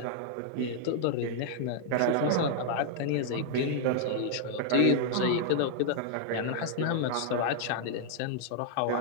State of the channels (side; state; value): both; different; correlation -0.01